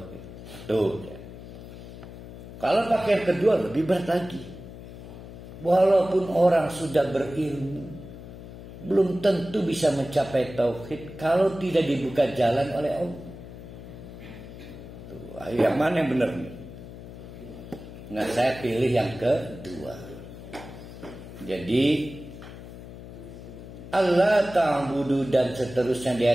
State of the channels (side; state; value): left; noise; hum, 14 dB below the sound